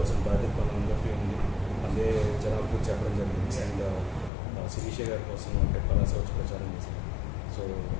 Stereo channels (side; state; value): right; drops out; at 4.3 s